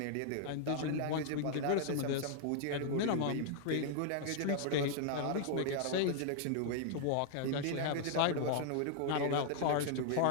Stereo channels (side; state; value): both; different; correlation -0.01